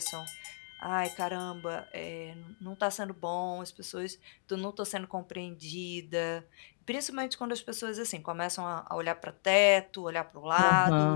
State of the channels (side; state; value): right; silent; digital silence